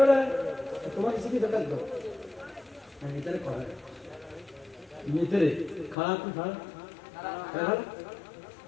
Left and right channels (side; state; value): right; drops out; at 6.0 s